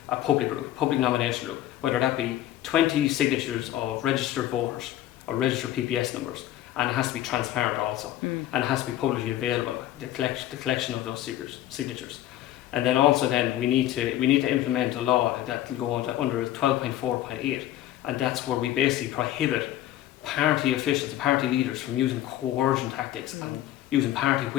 a public nomination rule, whether that be 20 signatures of registered voters or registered PPS numbers. And it has to be transparent also, and it has to be publicly available. The collection of those signatures, and then also we need to implement a law that will go under 12.4.8, and that's where we basically prohibit party officials, party leaders, from using coercion tactics and using party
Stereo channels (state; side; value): quieter; right; 13.3 dB